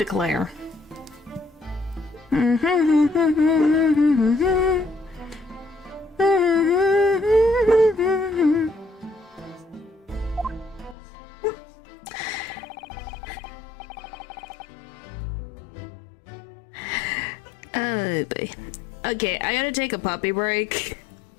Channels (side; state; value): right; drops out; at 11.0 s